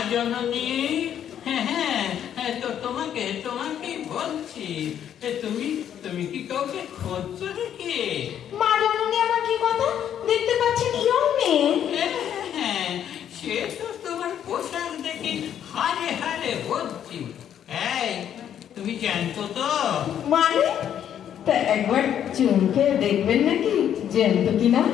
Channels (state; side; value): quieter; right; 9.7 dB